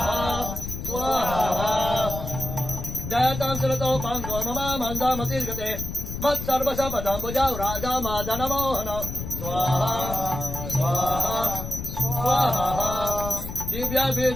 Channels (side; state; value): left; noise; rumble, 7 dB below the sound